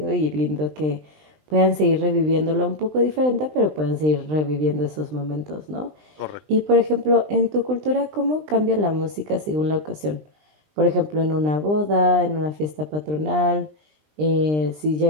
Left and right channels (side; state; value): left; late; 20 ms